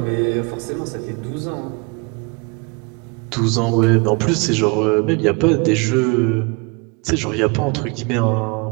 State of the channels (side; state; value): left; quieter; 29.3 dB